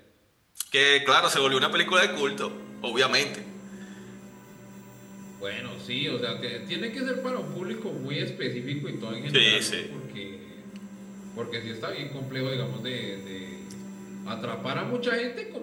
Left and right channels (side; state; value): both; identical; correlation 1.00